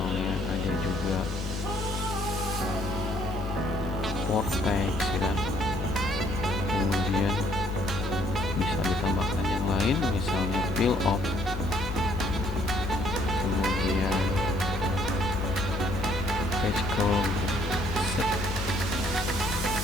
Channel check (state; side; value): normal; both; correlation 0.65